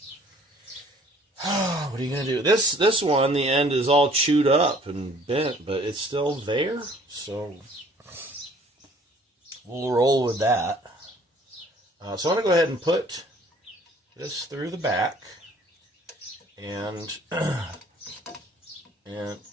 what are you going to do? This one, the end is all chewed up and bent, but it's still there. So, we'll roll with that. So I'm going to go ahead and put this through the back, and it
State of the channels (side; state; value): both; normal; correlation 0.56